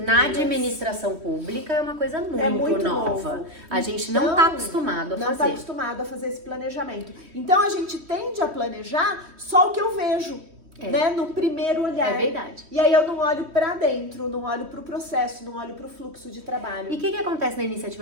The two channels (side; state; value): left; late; 3.1 ms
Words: Na administração pública é uma coisa muito, nova. novo. A gente Então, não tá acostumado a Não fazer. está acostumado a fazer esse planejamento. Então a gente tende a planejar só o que eu vejo, né? No primeiro olhar. É verdade. E aí eu não olho para dentro, não olho para o processo, não olho para o fluxo de trabalho. E o que acontece na